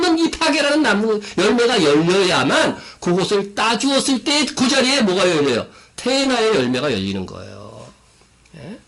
이 파게라는 나무 열매가 열려야만 그것을 따주었을 때 그 자리에 뭐가 열려요? 태나의 열매가 열리는 거예요.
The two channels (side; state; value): both; identical; correlation 1.00